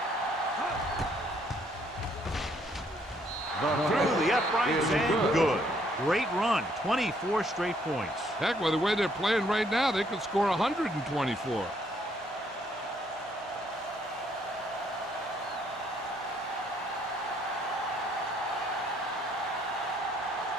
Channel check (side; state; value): both; normal; correlation 0.68